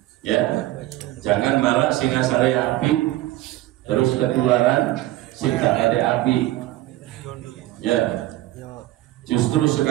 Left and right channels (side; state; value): left; quieter; 16.1 dB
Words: Ya, jangan malah sing asale api terus ketularan sing gak ada api. Ya, justru